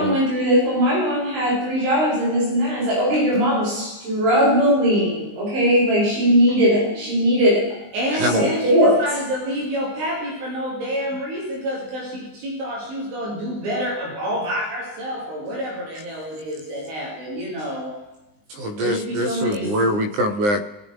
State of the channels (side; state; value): left; late; 19 ms